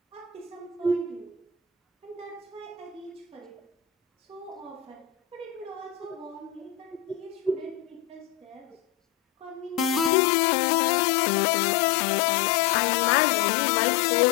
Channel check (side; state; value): right; drops out; at 10.1 s